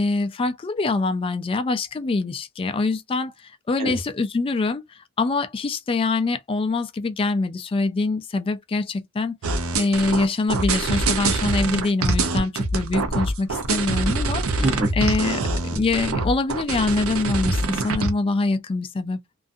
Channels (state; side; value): normal; both; correlation 0.62